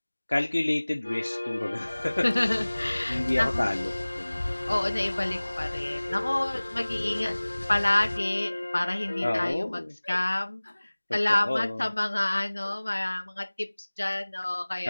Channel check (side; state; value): both; inverted; correlation -1.00